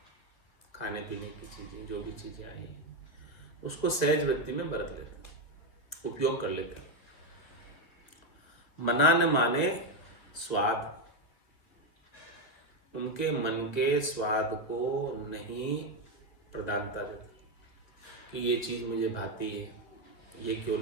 खाने पीने की चीजें, जो भी चीजें आई हैं उसको सहज वृत्ति में बरत लेते हैं, उपयोग कर लेते हैं। मना न माने स्वाद, उनके मन के स्वाद को नहीं प्रधानता देता कि ये चीज मुझे भाती है, ये क्यों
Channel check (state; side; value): late; right; 1.9 ms